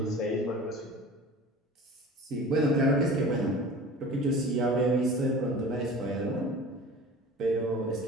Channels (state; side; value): normal; both; correlation 0.40